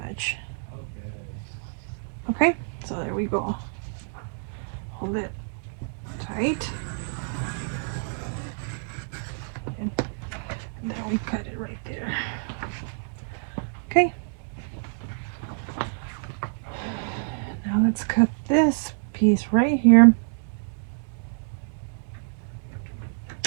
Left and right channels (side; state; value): left; silent; digital silence